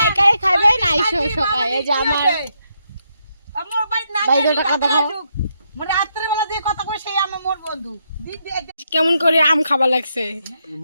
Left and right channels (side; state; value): both; inverted; correlation -0.79